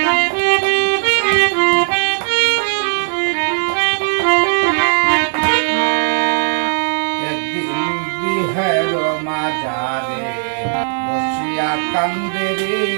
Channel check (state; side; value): silent; left; digital silence